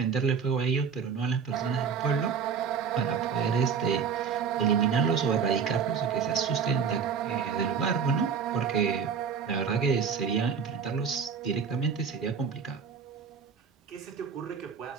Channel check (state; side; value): quieter; left; 6.4 dB